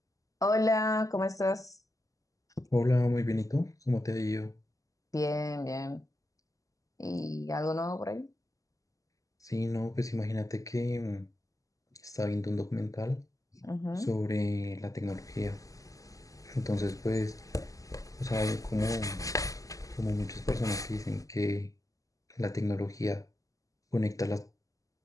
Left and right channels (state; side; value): late; right; 0.16 ms